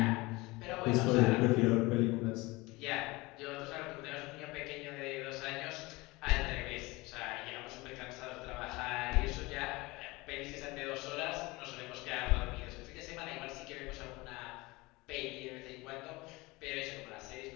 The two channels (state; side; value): quieter; right; 22.5 dB